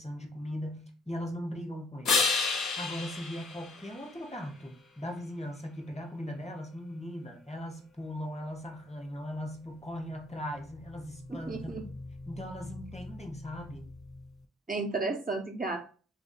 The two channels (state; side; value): normal; both; correlation 0.61